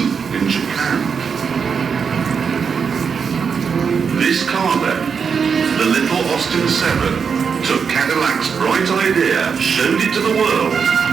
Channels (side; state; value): left; quieter; 6.2 dB